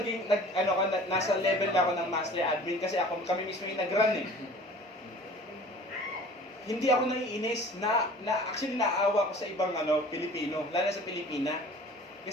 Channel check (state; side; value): normal; both; correlation 0.46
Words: nasa level na ako ng master admin kasi kami mismo yung nag-run eh. Hindi ako naiinis actually naawa ko sa ibang Pilipino, lalo sa Pilipina.